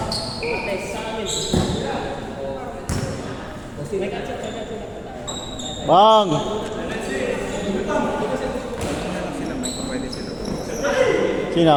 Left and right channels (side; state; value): both; identical; correlation 1.00